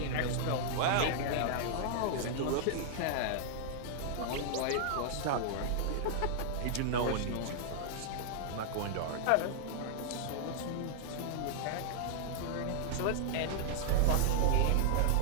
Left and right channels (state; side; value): different; both; correlation -0.01